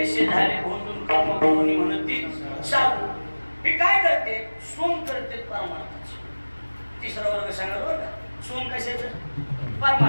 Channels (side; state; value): both; inverted; correlation -1.00